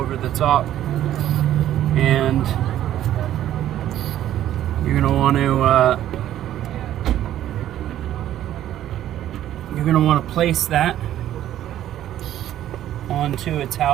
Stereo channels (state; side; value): quieter; left; 12.2 dB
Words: the top, and you're going to want to place that onto its